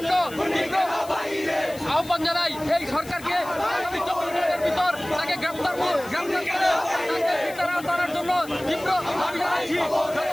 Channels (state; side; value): noise; left; hiss, 18 dB below the sound